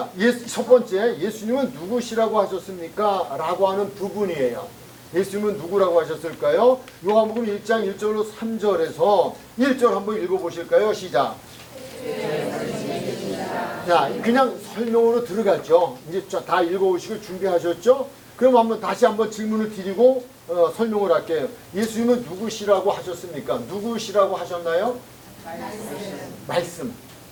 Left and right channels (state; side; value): identical; both; correlation 1.00